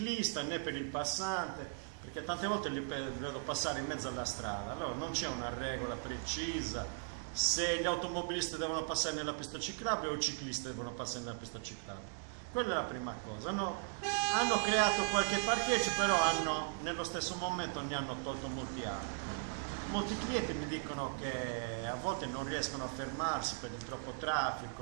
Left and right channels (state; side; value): silent; left; digital silence